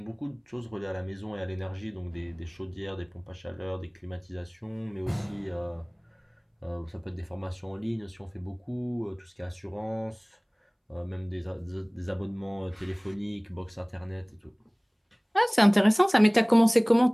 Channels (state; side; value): identical; both; correlation 1.00